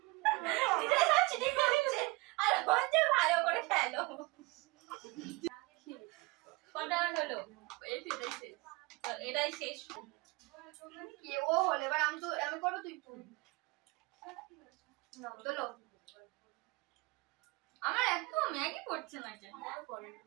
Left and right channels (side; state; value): left; quieter; 24.6 dB